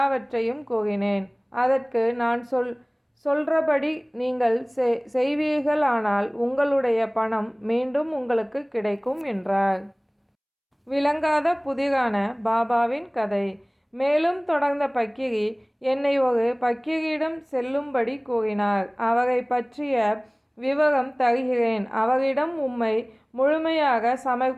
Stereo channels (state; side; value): identical; both; correlation 1.00